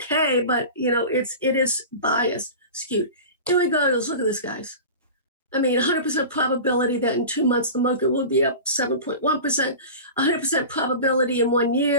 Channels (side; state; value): both; inverted; correlation -0.33